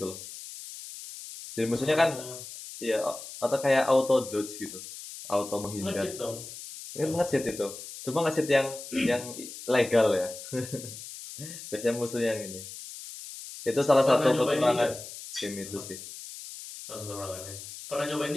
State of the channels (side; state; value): left; noise; hiss, 12 dB below the sound